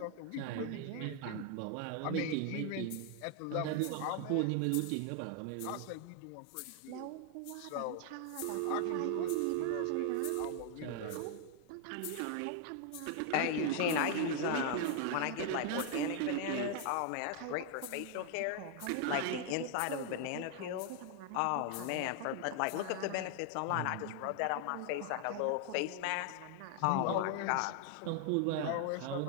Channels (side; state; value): both; different; correlation 0.00